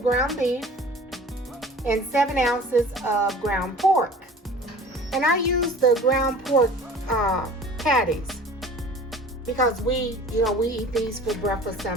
ground beef and 7 ounces of ground pork. And I use the ground pork patties because we eat these for breakfast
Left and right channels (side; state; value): both; normal; correlation 0.44